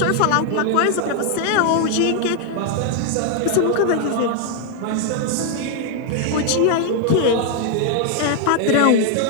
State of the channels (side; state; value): both; different; correlation 0.00